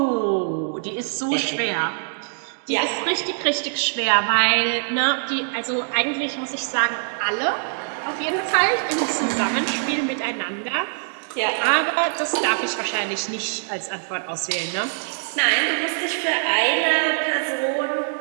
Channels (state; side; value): silent; left; digital silence